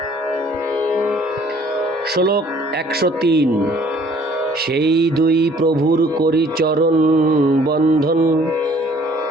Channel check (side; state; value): both; normal; correlation 0.57